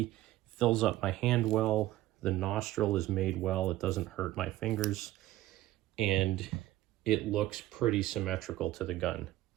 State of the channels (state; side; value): quieter; left; 15.6 dB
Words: Fills up my hand well. The nostril is made well. It doesn't hurt my fingers, and it looks pretty symmetrical to the gun.